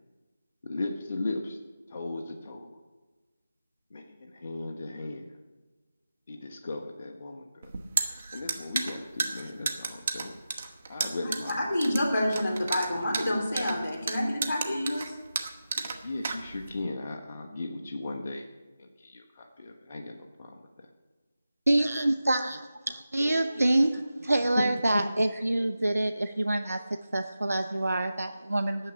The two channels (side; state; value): both; inverted; correlation -0.92